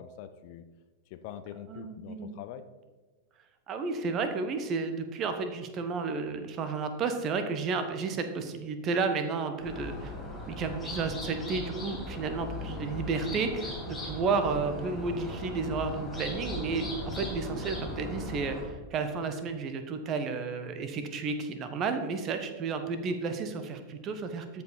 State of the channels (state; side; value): quieter; left; 3.5 dB